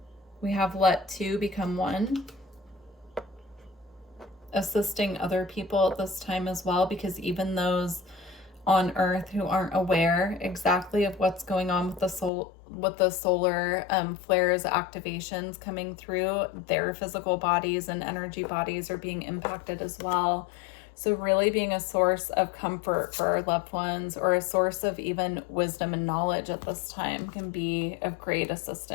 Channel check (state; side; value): drops out; right; at 12.3 s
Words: We have let two become one. Assisting other people at this time as well, because even those on Earth who aren't aware exactly of what's going on with the solar flares, activations coming through, their physical bodies and energy bodies are being impacted as well. So really being a source of comfort for our loved ones, or a source of even wisdom and knowledge at this time, can be of great